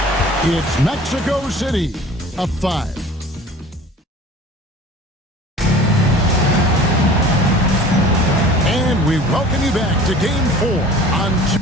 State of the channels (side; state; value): both; normal; correlation 0.44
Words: It's Mexico City up 5. And we welcome you back to Game 4 on